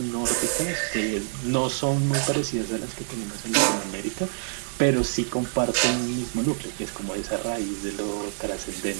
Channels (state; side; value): silent; left; digital silence